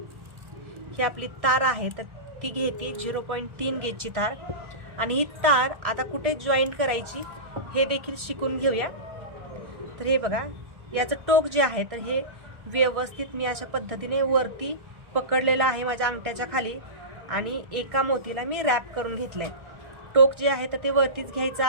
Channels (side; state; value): left; late; 1.4 ms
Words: ही आपली तार आहे तर ती घेते 0.3 गेजची तार आणि ही तार आता कुठे जॉईंट करायची हे देखील शिकून घेऊया. तर हे बघा याचं टोक जे आहे तर हे व्यवस्थित मी अशा पद्धतीने वरती पकडलेलं आहे माझ्या अंगठ्याच्या खाली आणि एका मोतीला मी रॅप करून घेतलंय. टोक जे आहे तर ते वरतीच घ्यायचं